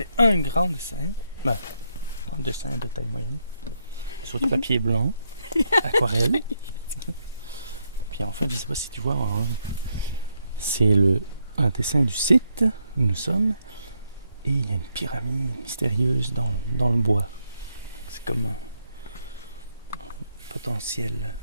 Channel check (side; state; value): both; inverted; correlation -0.79